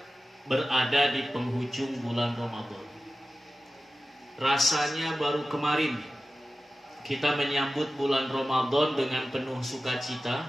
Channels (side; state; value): both; normal; correlation 0.94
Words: berada di penghujung bulan Ramadan. Rasanya baru kemarin kita menyambut bulan Ramadan dengan penuh